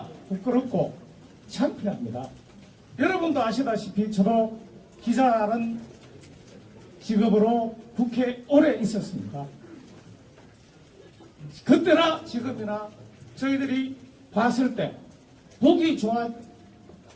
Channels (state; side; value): identical; both; correlation 1.00